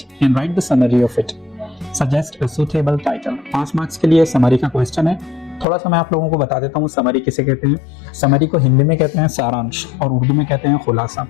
and write the summary of it. Suggest a suitable title. 5 marks के लिए समरी का क्वेश्चन है। थोड़ा सा मैं आप लोगों को बता देता हूँ समरी किसे कहते हैं। समरी को हिंदी में कहते हैं सारांश और उर्दू में कहते हैं खुलासा।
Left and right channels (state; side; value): drops out; right; at 5.7 s